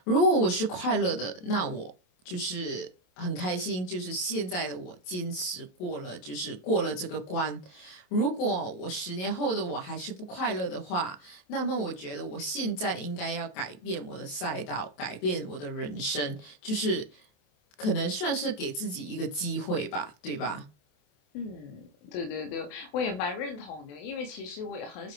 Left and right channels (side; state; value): right; late; 27 ms